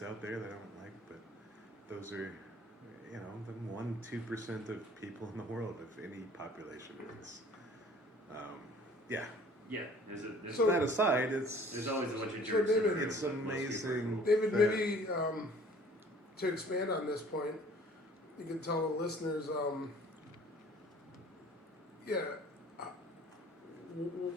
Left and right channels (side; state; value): both; normal; correlation 0.52